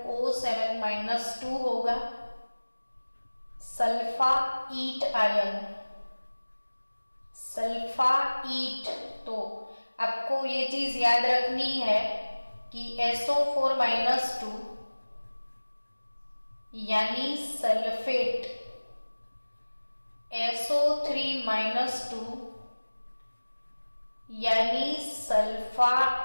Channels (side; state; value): both; inverted; correlation -1.00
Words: होगा। सल्फाईट आयन, सल्फाईट, तो आपको ये चीज याद रखनी है कि SO4-2 यानी सल्फेट, SO3-2 यानी